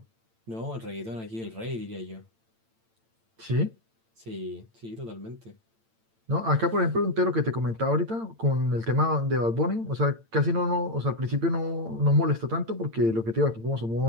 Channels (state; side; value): late; left; 8.9 ms